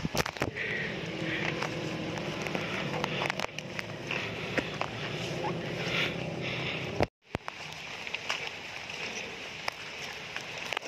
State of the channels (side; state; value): both; identical; correlation 1.00